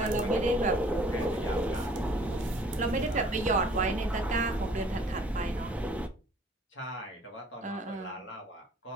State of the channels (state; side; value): normal; both; correlation 0.55